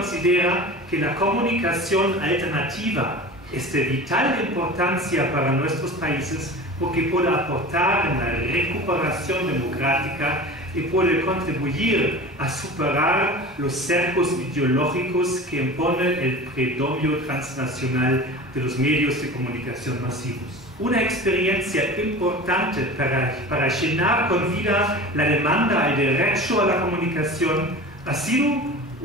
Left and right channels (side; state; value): both; normal; correlation 0.35